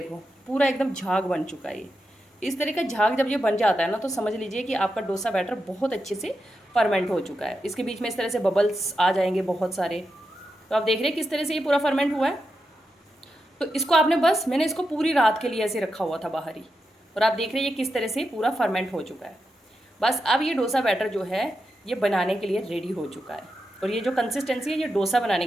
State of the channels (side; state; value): both; normal; correlation 0.87